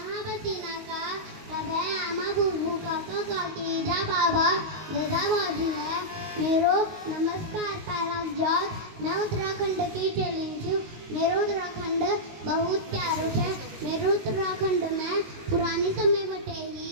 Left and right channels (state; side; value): late; left; 19 ms